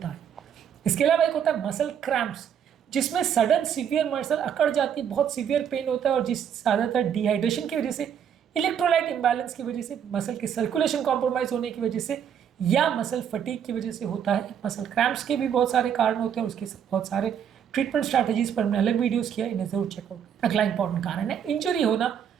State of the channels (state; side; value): quieter; left; 8.5 dB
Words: है। इसके अलावा एक होता है मसल क्रैम्प्स, जिसमें सडन सीवियर मसल अकड़ जाती है, बहुत सीवियर पेन होता है और जिस ज़्यादातर डिहाइड्रेशन की वजह से, इलेक्ट्रोलाइट इम्बैलेंस की वजह से, मसल की सर्कुलेशन कॉम्प्रोमाइज होने की वजह से या मसल फटीग की वजह से होता है। मसल क्रैम्प्स के भी बहुत सारे कारण होते हैं, उसके बहुत सारे ट्रीटमेंट स्ट्रैटेजीज पर हमने अलग वीडियोस किया, इन्हें जरूर चेकआउट। अगला इंपॉर्टेंट कारण है इंजरी होना।